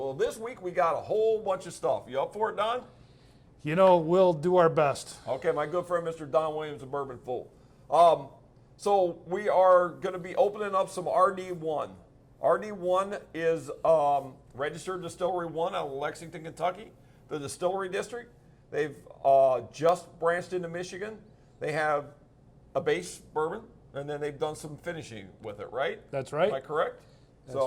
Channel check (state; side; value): identical; both; correlation 1.00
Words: this week we got a whole bunch of stuff. You up for it, Don? You know, we'll do our best. Okay, my good friend Mr. Don Williams of Bourbon Fool. So we are going to be opening up some RD1. RD1 is Registered Distillery 1 out of Lexington, Kentucky, the Distillery District. They've just branched into Michigan. They have a base bourbon, and then they've done some finishing with it, right? That's right. Am I correct?